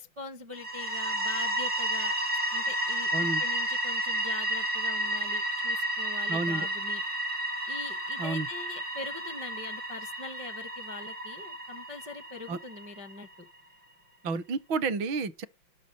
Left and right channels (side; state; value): left; late; 5.7 ms